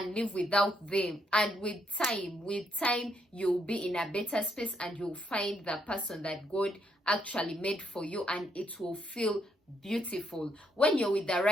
live without them. And with time, you'll be in a better space and you'll find the person that God actually made for you, and it will feel beautiful. When you're with the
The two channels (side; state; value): both; normal; correlation 0.75